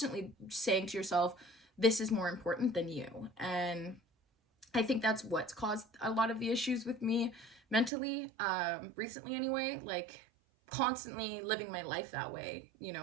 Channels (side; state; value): left; drops out; at 7.9 s